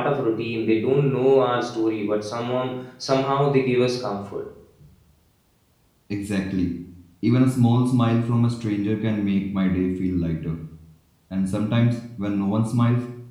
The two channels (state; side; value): identical; both; correlation 1.00